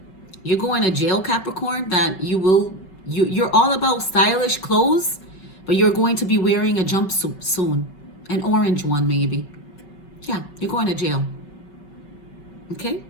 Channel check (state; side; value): late; right; 5.3 ms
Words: you're going to jail, Capricorn, that you're all about stylish clothes, but you're going to be wearing a jumpsuit soon. An orange one, maybe. Yeah, you're going to jail. Okay?